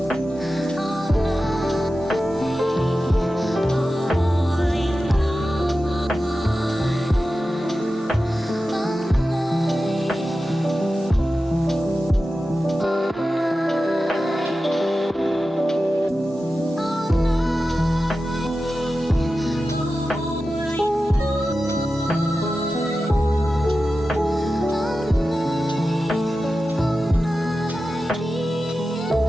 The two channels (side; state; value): both; normal; correlation 0.93